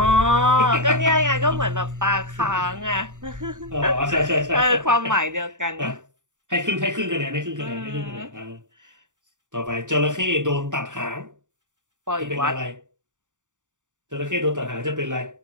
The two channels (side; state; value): left; late; 0.86 ms